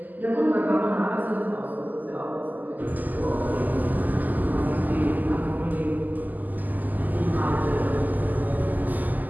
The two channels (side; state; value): left; late; 0.083 ms